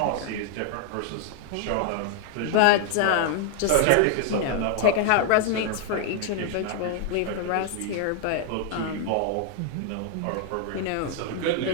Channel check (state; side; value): different; both; correlation 0.00